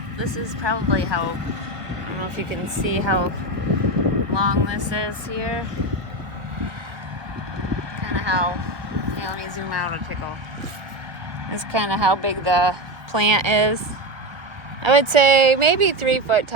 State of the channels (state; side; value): late; left; 1.2 ms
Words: this is probably how, I don't know if you can see how long this is here. Kind of how, yeah, let me zoom out a tickle. This is kind of how big the plant is. I would say maybe 3 foot